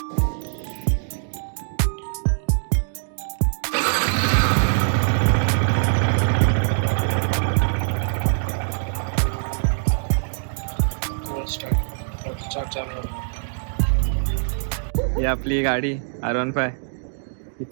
आपली गाडी R15 ही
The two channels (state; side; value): silent; left; digital silence